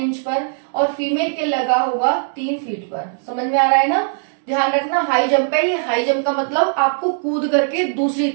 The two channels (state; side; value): silent; left; digital silence